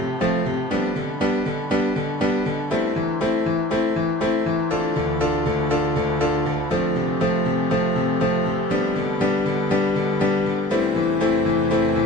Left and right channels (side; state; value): both; normal; correlation 0.43